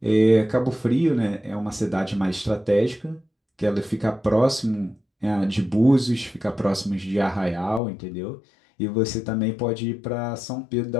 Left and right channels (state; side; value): drops out; right; at 7.8 s